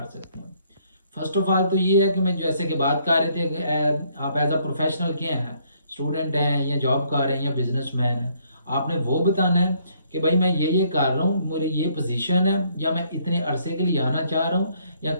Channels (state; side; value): inverted; both; correlation -0.67